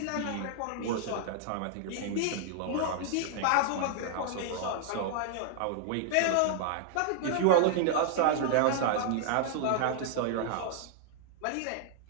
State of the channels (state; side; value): different; both; correlation -0.01